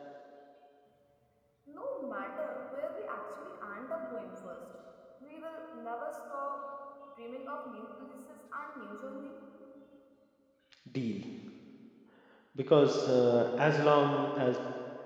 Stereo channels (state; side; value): identical; both; correlation 1.00